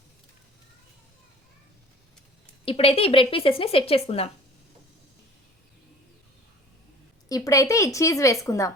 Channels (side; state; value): both; normal; correlation 0.47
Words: ఇప్పుడైతే ఈ బ్రెడ్ పీసెస్ని సెట్ చేసుకుందాం. ఇప్పుడైతే ఈ చీజ్ వేసుకుందాం.